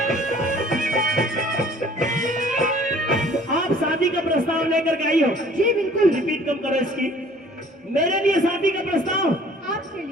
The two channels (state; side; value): normal; both; correlation 0.53